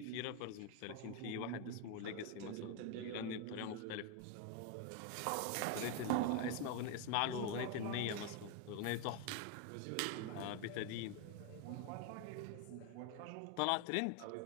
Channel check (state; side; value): different; both; correlation 0.01